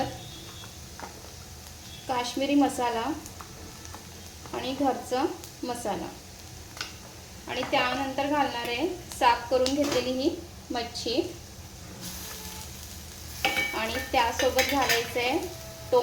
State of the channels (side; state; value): both; identical; correlation 1.00